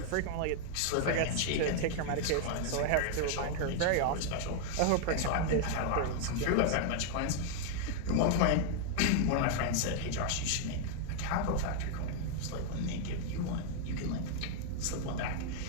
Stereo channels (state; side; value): different; both; correlation 0.00